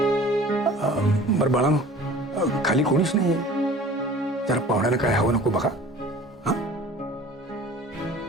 बरं बाळांनो, खाली कोणीच नाहीये. जरा पाहुण्याला काय हवं नको बघा. हा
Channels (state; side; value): normal; both; correlation 0.45